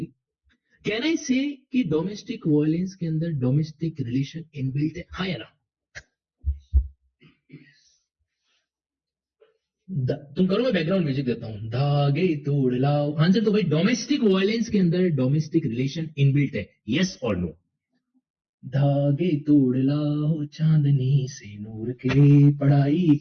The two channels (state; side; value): identical; both; correlation 1.00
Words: Can I से कि डोमेस्टिक वायलेंस के अंदर डोमेस्टिक रिलेशन इनबिल्ट है? हाँ या ना? तुम करो, मैं बैकग्राउंड म्यूजिक देता हूं। धागे तोड़ लाओ। आंसर तो भाई डोमेस्टिक वायलेंस के अंदर डोमेस्टिक रिलेशन इनबिल्ट है। यस और नो? धागे तोड़ लाओ चांदनी से नूर के, पढ़ाई